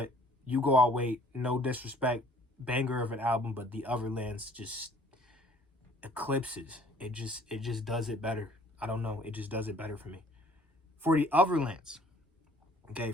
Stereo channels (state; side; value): normal; both; correlation 0.56